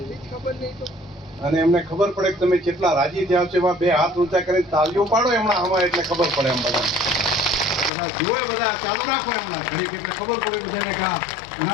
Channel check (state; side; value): drops out; right; at 7.9 s